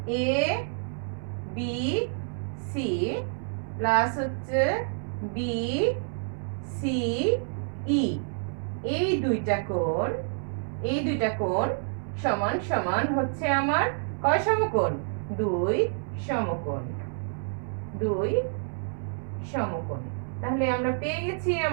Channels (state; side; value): silent; left; 59 dB below the other